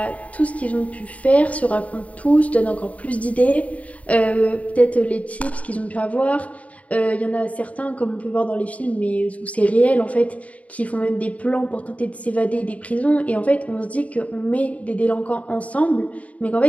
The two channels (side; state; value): right; late; 0.068 ms